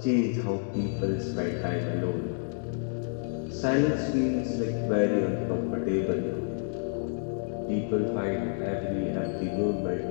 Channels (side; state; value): right; silent; digital silence